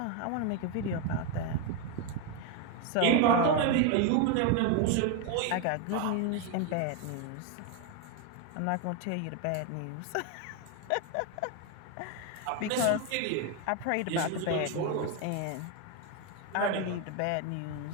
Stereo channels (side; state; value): both; different; correlation 0.02